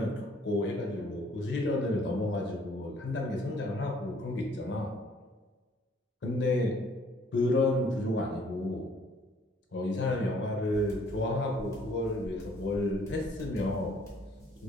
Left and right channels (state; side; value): normal; both; correlation 0.60